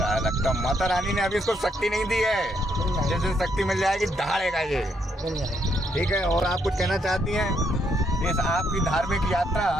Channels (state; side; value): normal; both; correlation 0.74